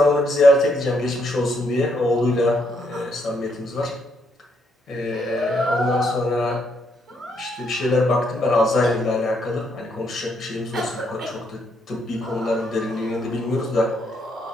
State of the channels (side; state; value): both; normal; correlation 0.74